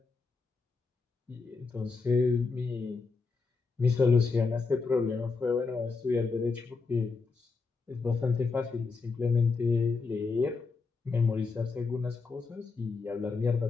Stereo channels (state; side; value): quieter; right; 4.4 dB